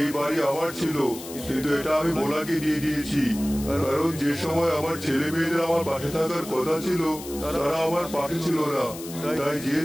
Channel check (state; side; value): noise; left; hiss, 13 dB below the sound